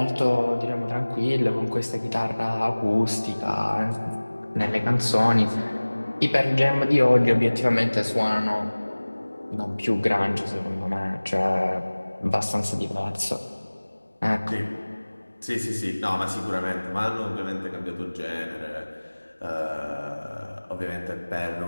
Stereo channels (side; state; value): both; inverted; correlation -1.00